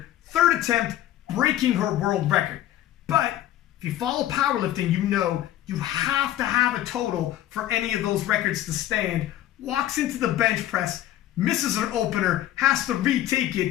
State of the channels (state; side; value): quieter; right; 13.2 dB